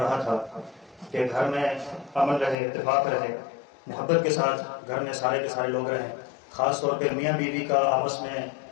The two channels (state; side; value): drops out; right; at 2.6 s